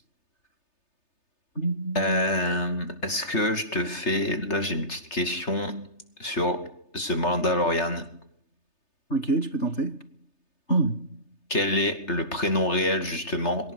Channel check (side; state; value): right; late; 3.3 ms